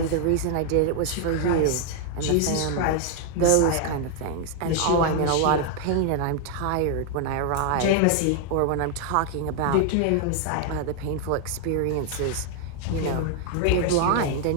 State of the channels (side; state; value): both; different; correlation 0.00